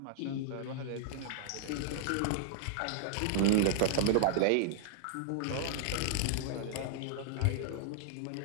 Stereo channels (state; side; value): different; both; correlation -0.01